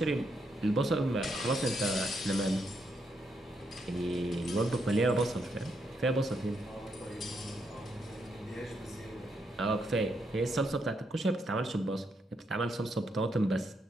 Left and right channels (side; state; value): both; normal; correlation 0.78